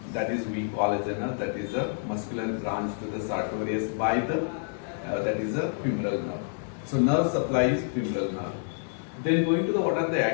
That is we call as a nerve. That is a muscular branch to the Sartorius by the that is a femoral nerve. So nerve supply is femoral nerve. Then going to the what are the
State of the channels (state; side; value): silent; right; digital silence